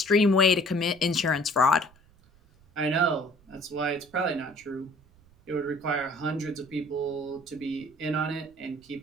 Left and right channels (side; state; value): right; noise; rumble, 29 dB below the sound